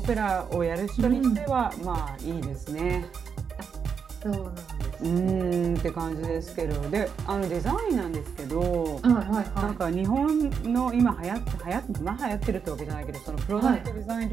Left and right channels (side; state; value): left; quieter; 6.5 dB